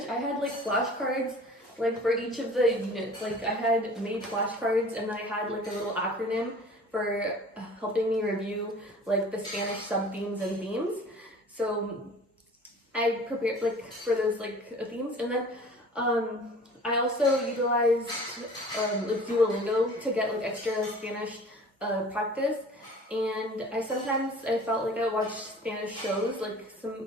I had like flashcards like for each of the units. Like I had made flashcards, and then I had like a little acronym for helping me review like the Spanish sub-themes and themes. So I prepared like for those like themes, and then I also utilized like Duolingo to get like extra Spanish practice. And I felt like I watched Spanish shows,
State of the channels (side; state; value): both; normal; correlation 0.45